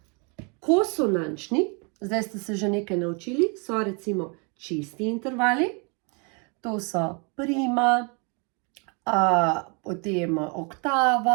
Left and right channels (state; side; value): quieter; left; 33.7 dB